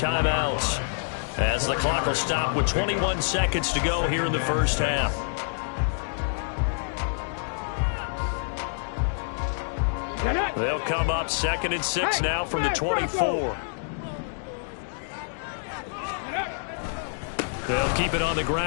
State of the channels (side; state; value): right; silent; digital silence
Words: as the clock will stop with 21 seconds to go here in the first half. They'll come up 2nd and 6 now from the 24. They'll keep it on the